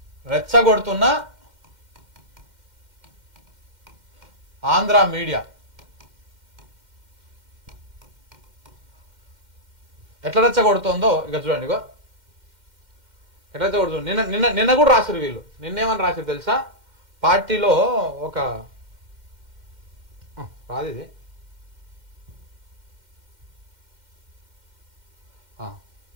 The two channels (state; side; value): late; left; 2.1 ms